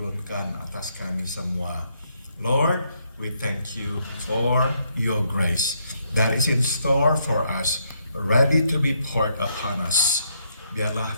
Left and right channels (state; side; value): inverted; both; correlation -0.74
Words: atas kami semua. Lord, we thank you for your grace that is in store for us, ready to be poured upon us. Biarlah